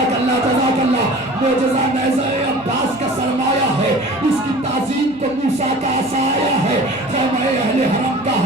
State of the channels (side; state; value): right; noise; hum, 25 dB below the sound